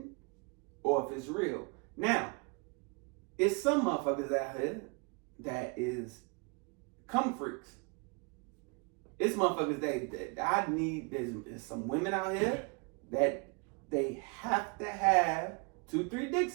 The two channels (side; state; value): left; quieter; 32.5 dB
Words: or if it's real. Now, it's some motherfuckers out here that is cum freaks. It's motherfuckers that I need. There's some women out here that they have to have 2-3